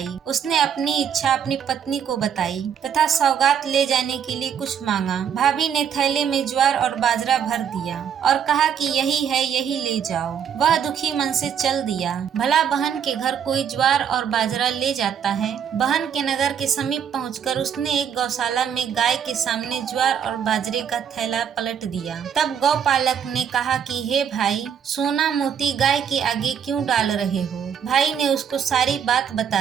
उसने अपनी इच्छा अपनी पत्नी को बताई तथा सौगात ले जाने के लिए कुछ मांगा। भाभी ने थैले में ज्वार और बाजरा भर दिया और कहा कि यही है, यही ले जाओ। वह दुखी मन से चल दिया। भला बहन के घर कोई ज्वार और बाजरा ले जाता है। बहन के नगर के समीप पहुंचकर उसने एक गौशाला में गाय के सामने ज्वार और बाजरे का थैला पलट दिया। तब गौपालक ने कहा कि हे भाई, सोना मोती गाय के आगे क्यों डाल रहे हो। भाई ने उसको सारी बात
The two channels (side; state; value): left; quieter; 8.1 dB